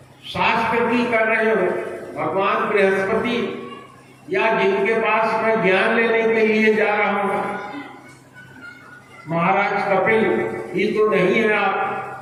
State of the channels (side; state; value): both; identical; correlation 1.00